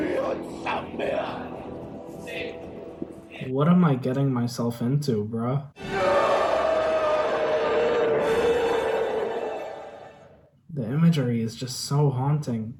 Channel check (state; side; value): identical; both; correlation 1.00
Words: What am I getting myself into, bruh? The imagery is just so haunting.